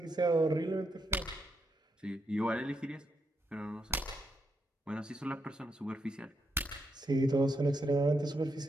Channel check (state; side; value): normal; both; correlation 0.81